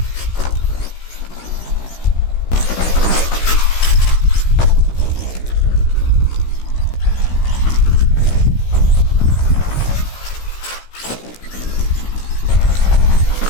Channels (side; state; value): right; late; 16 ms